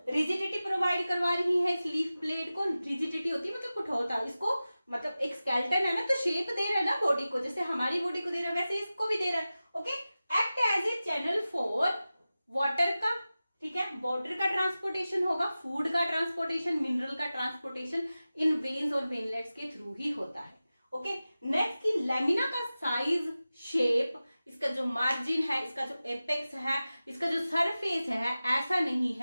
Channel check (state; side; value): inverted; both; correlation -0.95